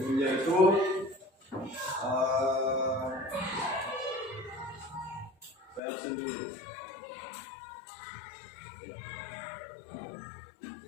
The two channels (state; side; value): drops out; right; at 5.8 s